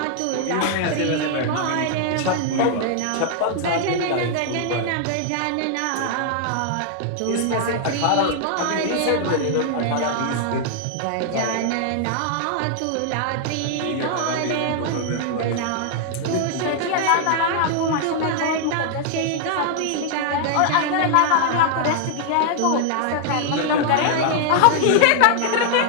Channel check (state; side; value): different; both; correlation 0.00